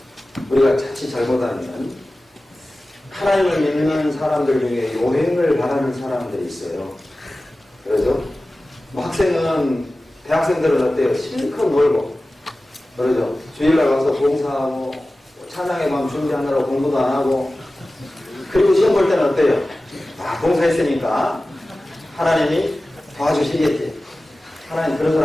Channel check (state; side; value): normal; both; correlation 0.96